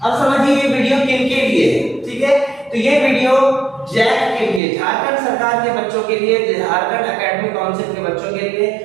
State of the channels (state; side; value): drops out; left; at 4.6 s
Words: अब समझिए ये वीडियो किन के लिए है, ठीक है? तो ये वीडियो जैक के लिए, झारखंड सरकार के बच्चों के लिए, झारखंड एकेडमिक काउंसिल के बच्चों के लिए।